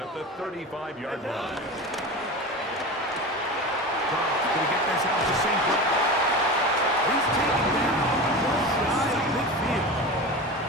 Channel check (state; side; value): normal; both; correlation 0.29